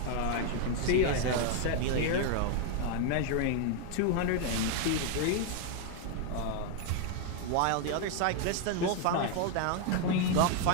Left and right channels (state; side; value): different; both; correlation 0.00